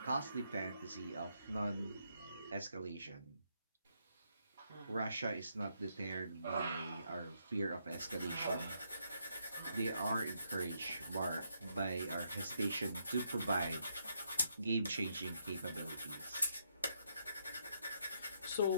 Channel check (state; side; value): inverted; both; correlation -0.76